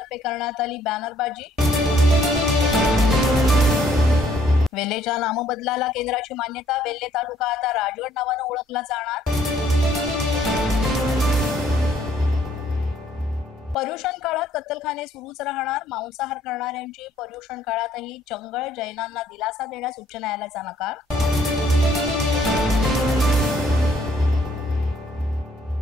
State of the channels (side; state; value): both; normal; correlation 0.65